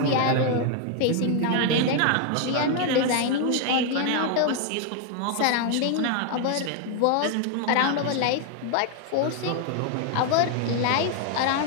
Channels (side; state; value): both; different; correlation 0.00